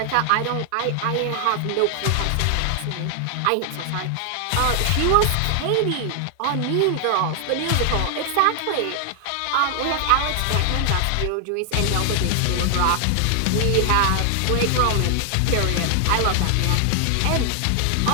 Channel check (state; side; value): different; both; correlation 0.00